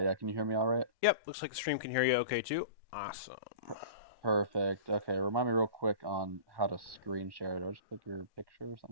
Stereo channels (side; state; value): left; late; 1.1 ms